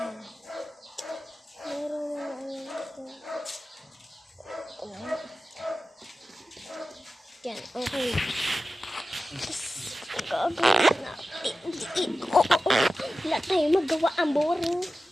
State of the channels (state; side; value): normal; both; correlation 0.94